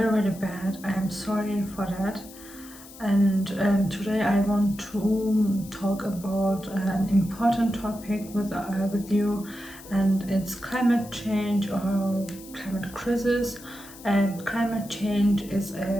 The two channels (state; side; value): noise; left; hiss, 18 dB below the sound